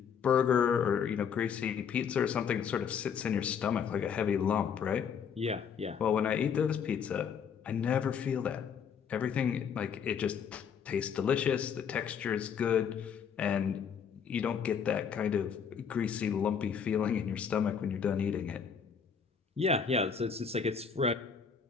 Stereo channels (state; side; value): quieter; right; 7.0 dB